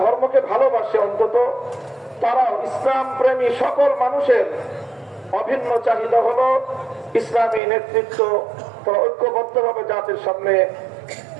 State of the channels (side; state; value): left; drops out; at 7.6 s